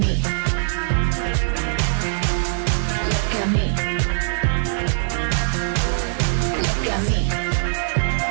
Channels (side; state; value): left; silent; 60 dB below the other